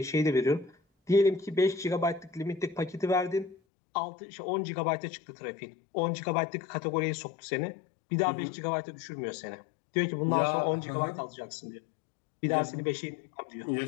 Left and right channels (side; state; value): right; drops out; at 3.6 s